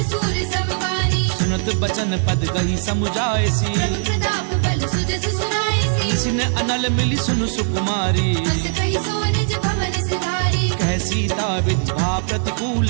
सूर समवानी सुनत बचन पद गही समुझायसी प्रभु प्रताप बल सुजस सुनाईसी निसिन अनल मिली सुनु सुकुमारी हस कहि सो निज भवन सिधारी कह सीता विधि भा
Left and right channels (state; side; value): silent; left; digital silence